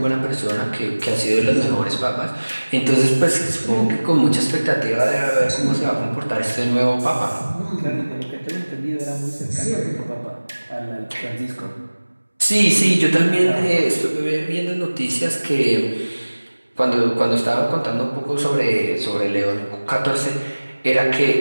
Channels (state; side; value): inverted; both; correlation -1.00